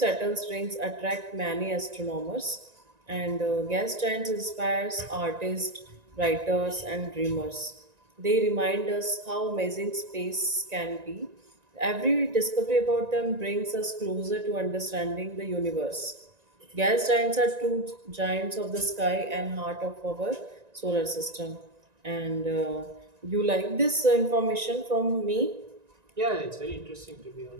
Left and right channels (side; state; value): left; late; 1.9 ms